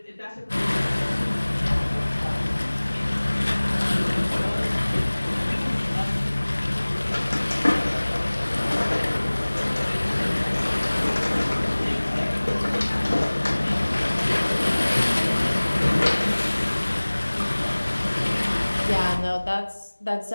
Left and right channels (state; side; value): inverted; both; correlation -1.00